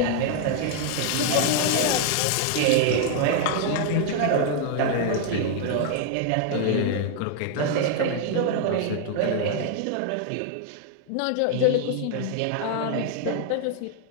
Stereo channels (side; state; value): both; different; correlation 0.00